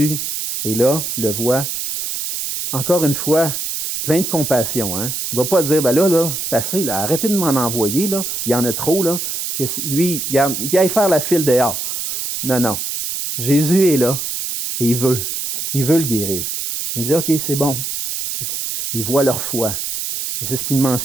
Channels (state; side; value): noise; right; hiss, 4 dB below the sound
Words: est là, le voit. Encore une fois, plein de compassion. Hein? Il ne va pas dire, là, c'est assez, là, arrêtez de m'en envoyer, là, il y en a trop, là, que lui, il aille faire la file dehors. Non. Jésus est là et il veut le guérir. Il dit, OK, c'est bon. Il voit leur foi. Et c'est ce qu'il